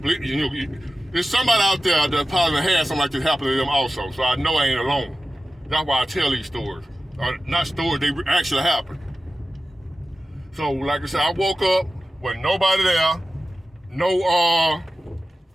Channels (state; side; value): normal; both; correlation 0.94